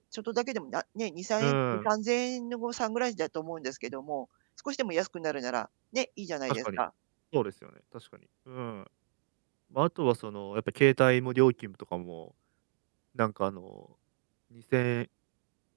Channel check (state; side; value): silent; left; digital silence